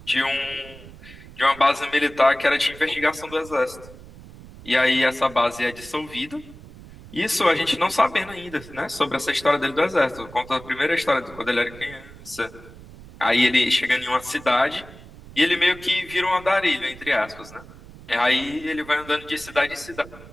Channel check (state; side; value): noise; right; rumble, 18 dB below the sound